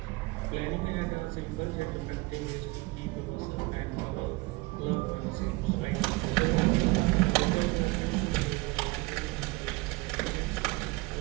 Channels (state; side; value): quieter; left; 23.9 dB